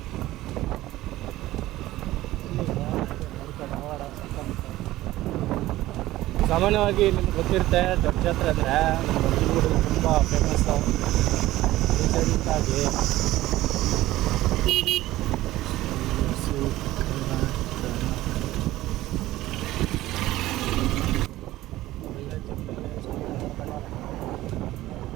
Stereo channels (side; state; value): left; quieter; 16.2 dB